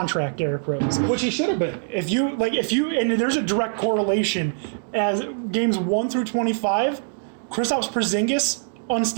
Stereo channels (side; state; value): left; silent; digital silence